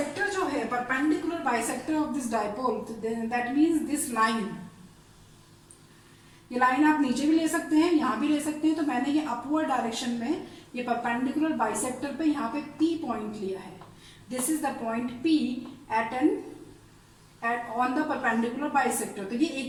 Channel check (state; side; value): identical; both; correlation 1.00